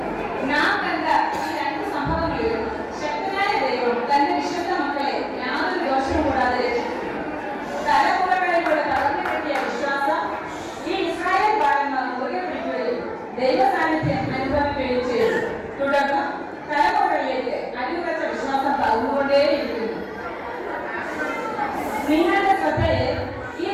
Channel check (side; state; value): both; identical; correlation 1.00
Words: തന്റെ വിശുദ്ധ മക്കളെ യാതൊരു ദോഷവും കൂടാതെ രക്ഷിച്ചു. തലമുറകളിലൂടെ തളർന്നു കിട്ടിയ വിശ്വാസം ഈ ഇസ്രായേൽ ബാലന്മാർ മുറുകെ പിടിക്കുകയും ദൈവ സാന്നിധ്യം അനുഭവിക്കുകയും ചെയ്തു. തുടർന്ന് തലമുറകളിലേക്ക് അടിയുറച്ച വിശ്വാസം പകർന്നുകൊണ്ടേയിരിക്കുന്നു. നിങ്ങളുടെ ശ്രദ്ധയെ ഈ